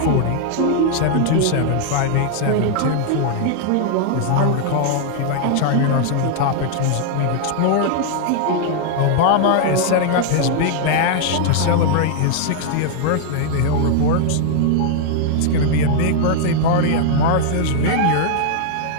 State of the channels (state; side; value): different; both; correlation -0.01